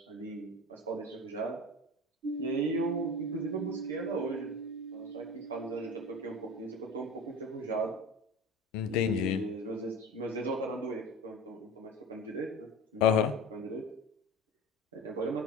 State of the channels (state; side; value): normal; both; correlation 0.31